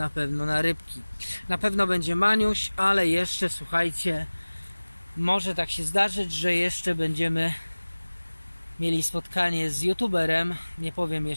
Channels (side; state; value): both; inverted; correlation -1.00